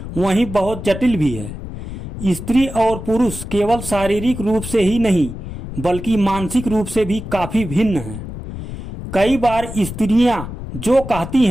वहीं बहुत जटिल भी है। स्त्री और पुरुष केवल शारीरिक रूप से ही नहीं बल्कि मानसिक रूप से भी काफी भिन्न हैं। कई बार स्त्रियां जो कहती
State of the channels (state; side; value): noise; left; rumble, 9 dB below the sound